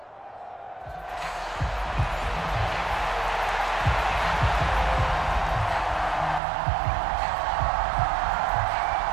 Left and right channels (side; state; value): left; drops out; at 6.4 s